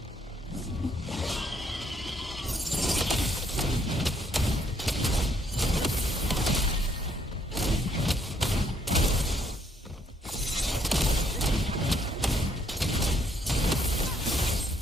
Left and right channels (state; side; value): normal; both; correlation 0.69